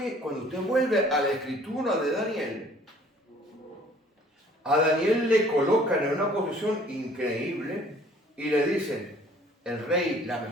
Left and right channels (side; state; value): both; normal; correlation 0.55